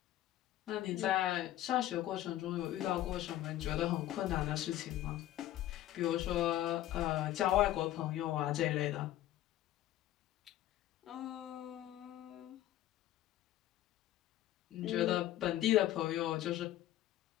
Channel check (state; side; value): quieter; right; 13.8 dB